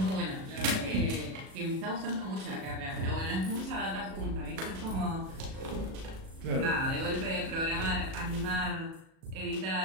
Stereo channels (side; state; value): left; late; 37 ms